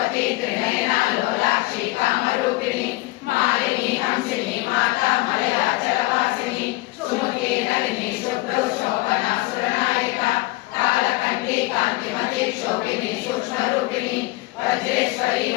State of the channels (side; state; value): right; quieter; 20.6 dB